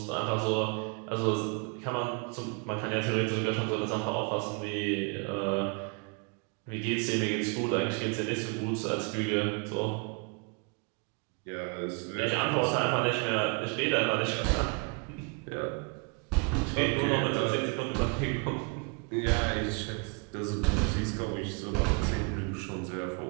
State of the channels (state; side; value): quieter; left; 34.3 dB